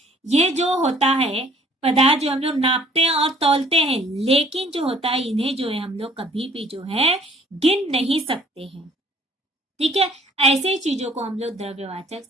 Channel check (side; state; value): both; normal; correlation 0.56